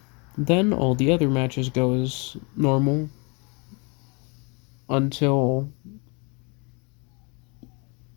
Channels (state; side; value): quieter; right; 32.1 dB